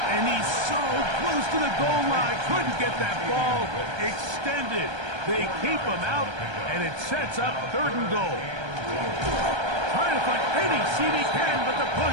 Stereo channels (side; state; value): left; late; 1.3 ms